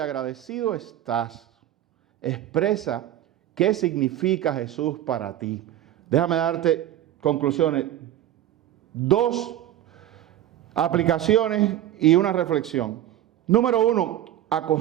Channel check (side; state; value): left; quieter; 12.4 dB